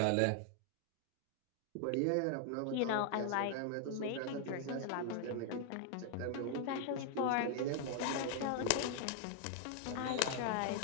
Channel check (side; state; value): both; different; correlation 0.00